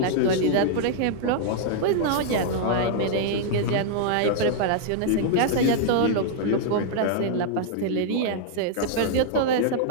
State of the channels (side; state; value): both; different; correlation -0.01